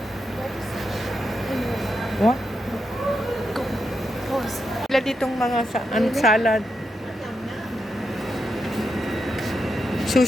What? Sila ditong mga salad.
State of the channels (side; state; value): both; normal; correlation 0.85